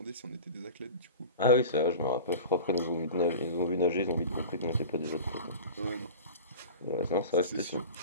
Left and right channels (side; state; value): both; inverted; correlation -0.34